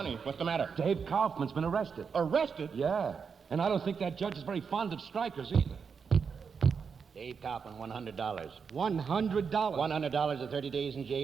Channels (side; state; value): left; quieter; 6.0 dB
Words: What's the matter? Dave Kaufman's been arrested. Arrested? Yeah, and I don't think that judge is very fond of strikers either. Dave Kaufman, $100. $100? $100 or 30 days in